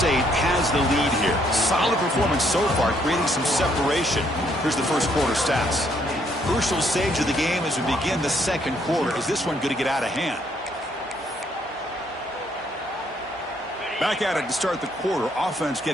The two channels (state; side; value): normal; both; correlation 0.69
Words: has the lead here. Solid performance so far, creating some separation. Here's the first quarter stats. Crucial stage of the game as we begin the second quarter. Is this one going to get out of hand? Back at it to start the quarter. Offense